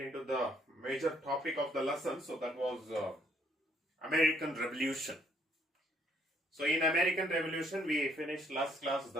the major topic of the lesson. So that was American Revolution. So in American Revolution we finished last class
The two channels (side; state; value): both; normal; correlation 0.67